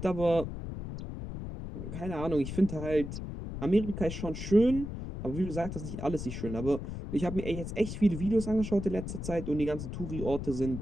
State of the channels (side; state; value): left; noise; rumble, 7 dB below the sound